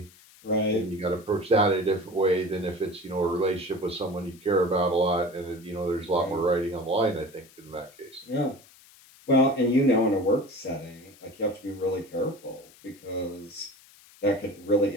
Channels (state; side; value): noise; left; hiss, 25 dB below the sound